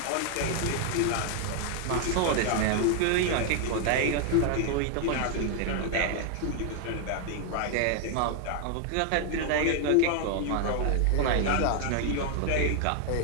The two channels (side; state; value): both; different; correlation 0.00